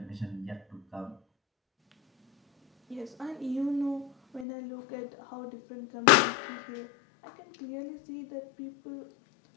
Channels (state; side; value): drops out; right; at 4.5 s